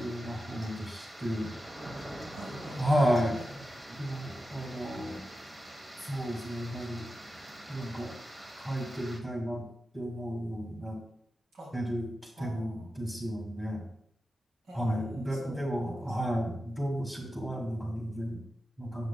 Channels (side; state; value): both; normal; correlation 0.91